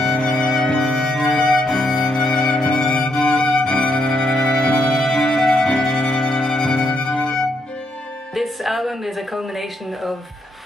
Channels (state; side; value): normal; both; correlation 0.77